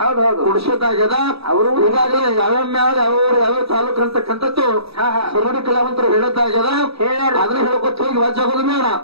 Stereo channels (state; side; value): late; left; 0.77 ms